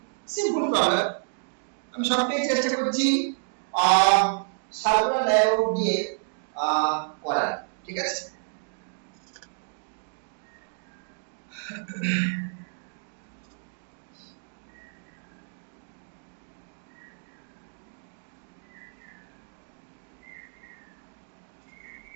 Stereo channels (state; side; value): silent; left; digital silence